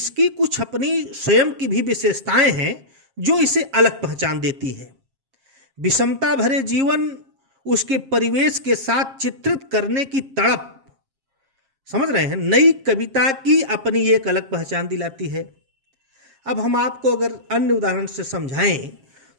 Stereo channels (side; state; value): left; late; 7.4 ms